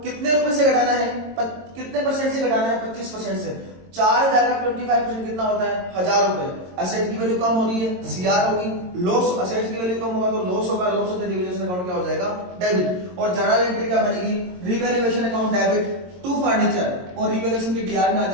कितने रुपए से घटाना है, कितने परसेंट से घटाना है, 25% से। 4,000 का 25% कितना होता है, 1,000 रुपए। असेट की वैल्यू कम हो रही है, सीआर होगी, लॉस, असेट की वैल्यू कम होगा तो लॉस होगा, लॉस होते रिवैल्यूएशन अकाउंट क्या हो जाएगा, डेबिट। और जर्नल एंट्री क्या बनेगी, revaluation account debit to furniture और रिवैल्यूएशन की डीआर में आ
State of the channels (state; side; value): late; left; 22 ms